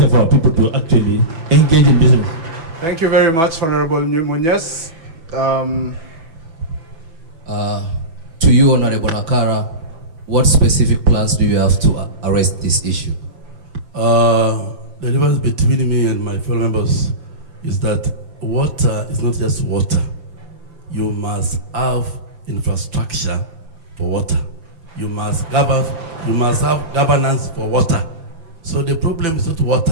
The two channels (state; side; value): late; left; 6.2 ms